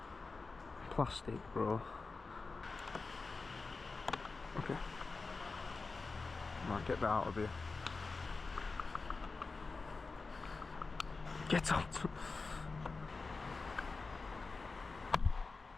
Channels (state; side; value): quieter; right; 4.1 dB